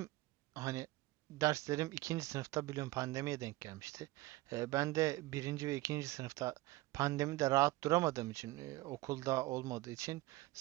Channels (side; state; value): left; quieter; 19.1 dB